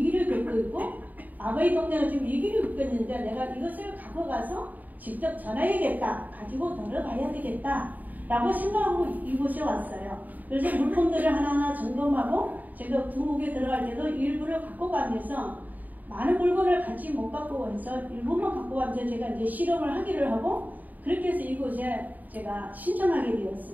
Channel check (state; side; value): late; left; 0.081 ms